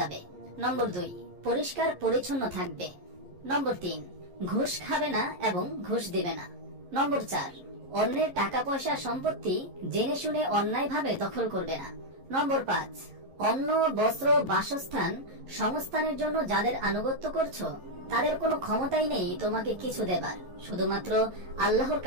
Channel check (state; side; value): late; left; 11 ms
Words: নম্বর 2, পরিষ্কার পরিচ্ছন্ন থাকবে। নম্বর 3, ঘুষ খাবে না এবং ঘুষ দিবে না। নম্বর 4, অন্যের টাকা পয়সা সম্পত্তি জেনে শুনে অন্যায়ভাবে দখল করবে না। নম্বর 5, অন্ন, বস্ত্র, বাসস্থান, সংস্থানের জন্য যাদের আনুগত্য করছো, তাদের কোনো ক্ষমতাই নেই তোমাকে কিছু দেবার, শুধুমাত্র আল্লাহর